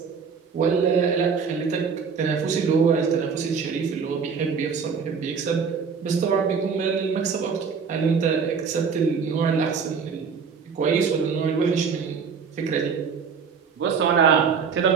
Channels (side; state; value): left; quieter; 5.9 dB